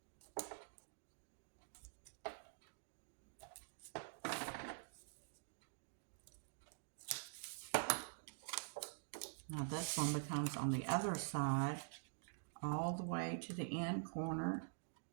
Now this one becomes on the other side, all the way to the end corner.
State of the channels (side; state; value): left; silent; digital silence